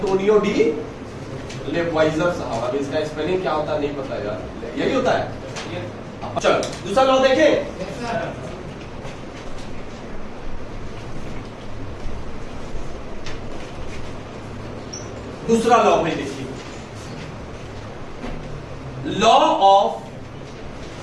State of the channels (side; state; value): both; identical; correlation 1.00